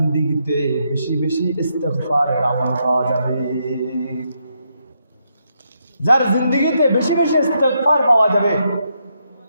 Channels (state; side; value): inverted; both; correlation -0.79